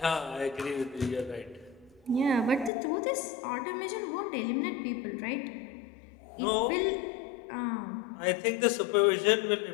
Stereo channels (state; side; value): drops out; right; at 2.7 s